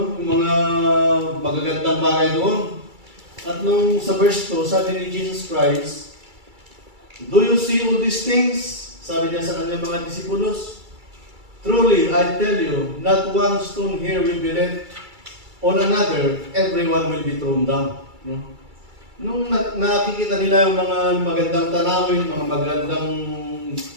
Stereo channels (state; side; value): late; left; 2.3 ms